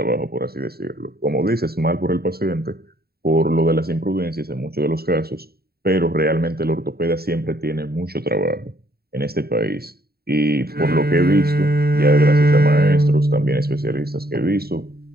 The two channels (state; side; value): late; left; 0.45 ms